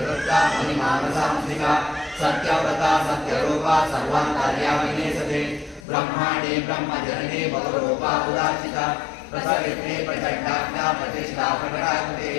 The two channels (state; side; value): drops out; right; at 5.9 s